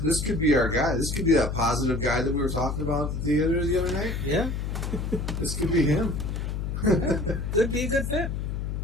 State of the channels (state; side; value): noise; left; hum, 3 dB below the sound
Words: could be our guy. This could be that positive guy that we were talking about at the theater the other night. Yeah, This could be him. could be a good fit.